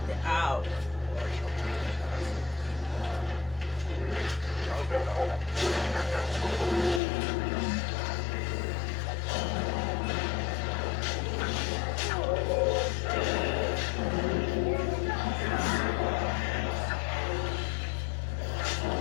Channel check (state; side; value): drops out; right; at 7.0 s